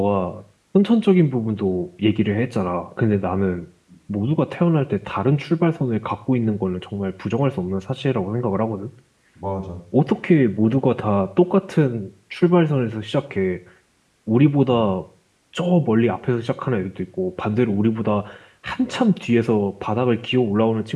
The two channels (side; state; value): both; identical; correlation 1.00